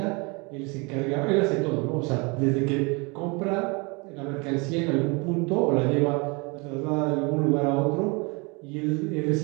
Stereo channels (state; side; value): quieter; left; 29.5 dB